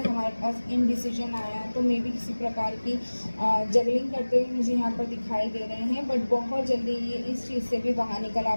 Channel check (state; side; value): inverted; both; correlation -1.00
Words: हमारे पास इनडिसीजन आया। तो मे भी किसी प्रकार की जगलिंग करते हुए मुझे यहाँ पर दिखाई दे रहे हैं, बट बहुत जल्दी ये इस चीज़ से भी बाहर निकल आ